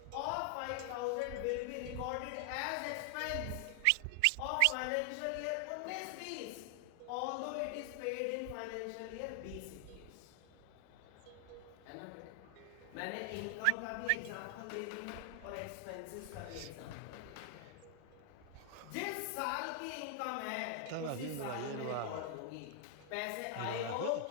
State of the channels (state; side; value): different; both; correlation 0.00